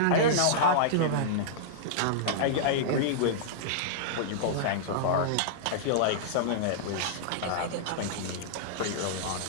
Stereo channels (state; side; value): different; both; correlation -0.02